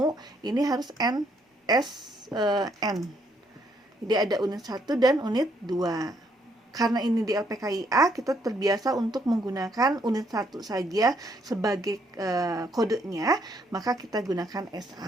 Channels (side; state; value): both; normal; correlation 0.71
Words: ini harus NSN. Jadi ada unit 1 dan unit 2. Karena ini di LPKIA, kita terbiasa untuk menggunakan unit 1 saja sebagai kodenya, maka kita gunakan